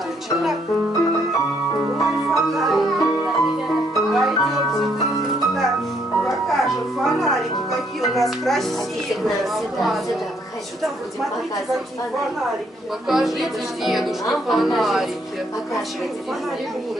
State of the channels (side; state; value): both; normal; correlation 0.70